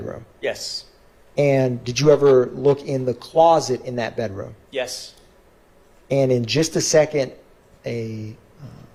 Yes. And did you ever look in the closet in that bedroom? Yes. And in just a second,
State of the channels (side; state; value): both; identical; correlation 1.00